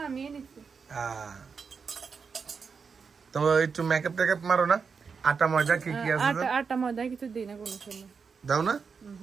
আমি নিচ্ছি। তো একটু মেকআপ টেকআপ মারো না, আটা ময়দা কি কি আছে? আটা ময়দা কিছু দিই না কোনো সময়। দাও না?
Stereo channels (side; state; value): left; quieter; 5.6 dB